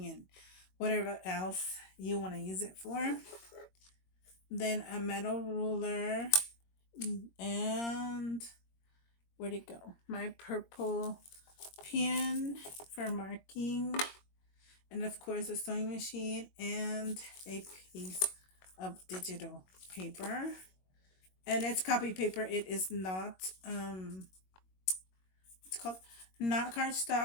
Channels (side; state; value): right; late; 21 ms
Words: and whatever else you want to use it for. Then a metal ruler and where'd it go? My purple pen for marking, and of course a sewing machine and a piece of digital paper, and it's copy paper. It is not it's called not